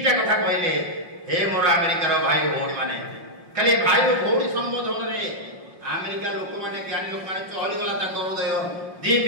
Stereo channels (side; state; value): left; late; 5.6 ms